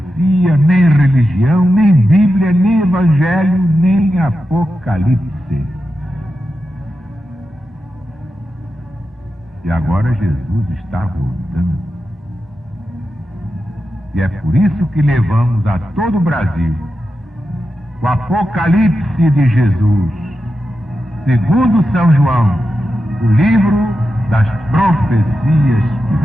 nem religião, nem Bíblia, nem Evangelho, nem Apocalipse. E agora Jesus está voltando. E é por isso que levamos a todo o Brasil o Apocalipse de Jesus, segundo São João, o livro das profecias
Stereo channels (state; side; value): normal; both; correlation 0.90